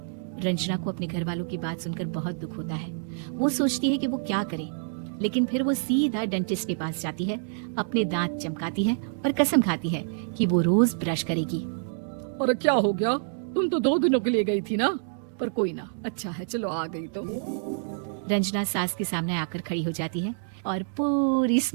रंजना को अपने घर वालों की बात सुनकर बहुत दुख होता है। वो सोचती है कि वो क्या करे, लेकिन फिर वो सीधा डेंटिस्ट के पास जाती है, अपने दांत चमकाती है और कसम खाती है कि वो रोज ब्रश करेगी। अरे क्या हो गया, तुम तो 2 दिनों के लिए गई थी ना, पर कोई ना, अच्छा है चलो आ गई तो। रंजना सास के सामने आकर खड़ी हो जाती है और पूरी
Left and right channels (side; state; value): left; silent; digital silence